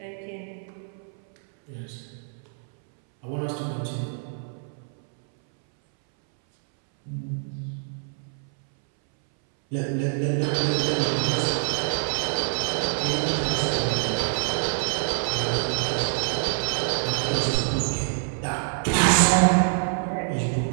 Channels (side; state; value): left; silent; 61 dB below the other